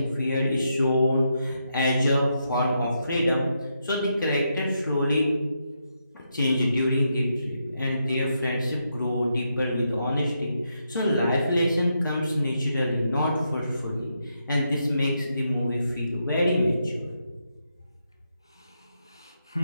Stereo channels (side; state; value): both; inverted; correlation -0.82